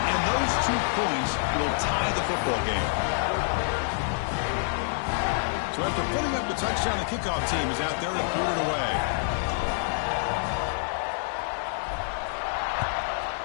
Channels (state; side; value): silent; right; 60 dB below the other